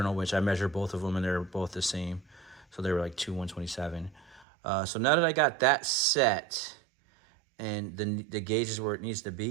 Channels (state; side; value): drops out; left; at 4.5 s